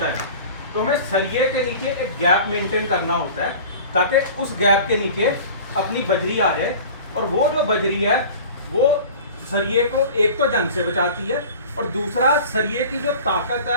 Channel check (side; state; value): both; inverted; correlation -0.40